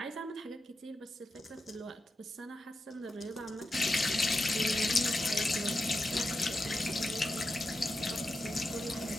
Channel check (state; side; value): normal; both; correlation 0.88